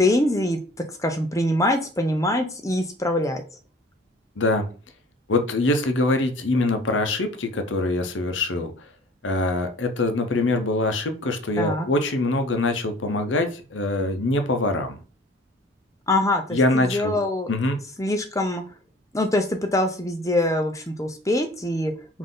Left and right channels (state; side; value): normal; both; correlation 0.48